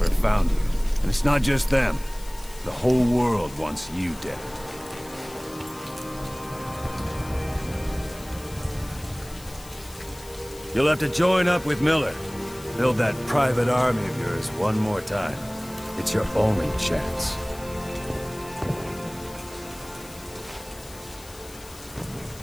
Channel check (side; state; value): left; noise; hiss, 19 dB below the sound